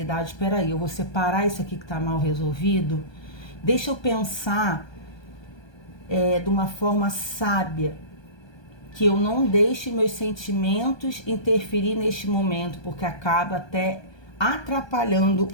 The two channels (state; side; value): late; right; 1.2 ms